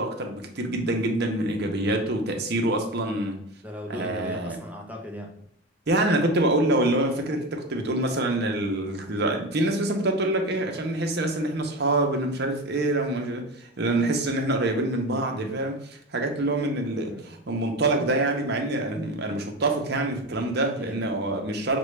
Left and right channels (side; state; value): both; normal; correlation 0.24